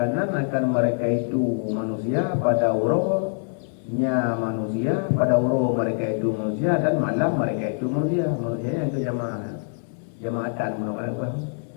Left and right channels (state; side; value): silent; right; digital silence